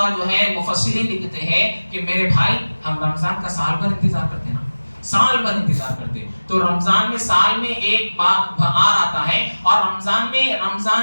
جو ہے مفسرین لکھتے ہیں کہ میرے بھائی ہم رمضان کا سال بھر انتظار کرتے ہیں نا، سال بھر انتظار کرتے. تو رمضان میں سال میں ایک بہار آتا ہے اور رمضان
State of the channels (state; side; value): inverted; both; correlation -1.00